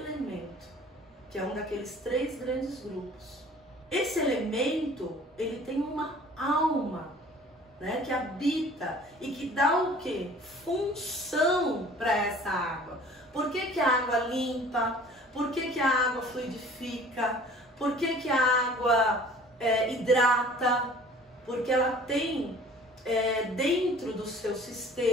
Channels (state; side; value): normal; both; correlation 0.49